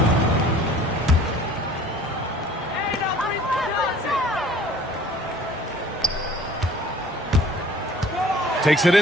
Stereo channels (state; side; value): normal; both; correlation 0.50